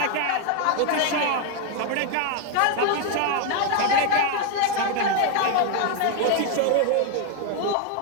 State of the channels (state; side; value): different; both; correlation 0.01